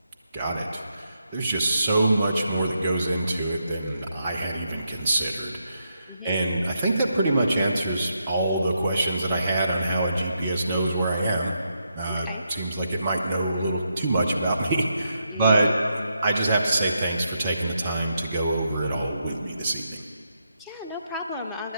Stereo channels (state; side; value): inverted; both; correlation -0.81